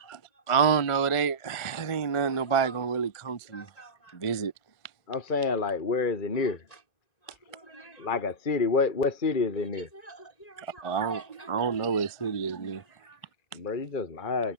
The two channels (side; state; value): right; late; 1.5 ms